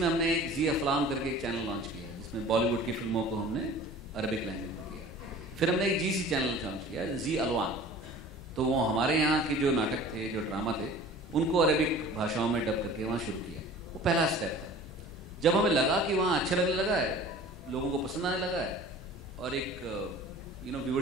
हमने एक जी अफलाम करके एक चैनल लॉन्च किया है जिसमें बॉलीवुड की फिल्मों को हमने अरबिक लैंग्वेज में किया. फिर हमने एक जीसी चैनल लॉन्च किया, जी अलवान. तो वो हमारे यहाँ के जो नाटक थे, जो ड्रामा थे, उनको अरबिक भाषाओं में डब करके वहाँ शुरू किया. वो पहला स्टेप था. जब हमें लगा कि वहाँ अच्छा लगने लगा है, लोगों को पसंद आने लगा है और एक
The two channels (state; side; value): normal; both; correlation 0.43